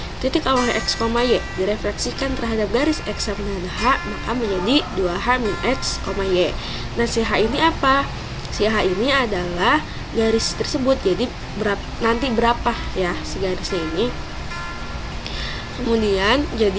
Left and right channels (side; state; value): both; identical; correlation 1.00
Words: Titik awal X, Y direfleksikan terhadap garis X sama dengan H, maka menjadi 2H min X, Y. Nah, si H ini apa? Si H ini adalah garis tersebut. Jadi nanti berapa ya si garisnya ini. Kemudian